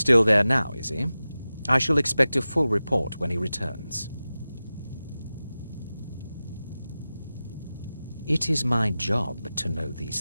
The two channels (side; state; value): both; inverted; correlation -0.95